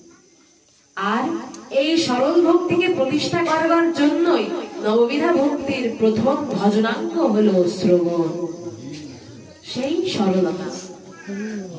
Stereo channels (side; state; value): both; identical; correlation 1.00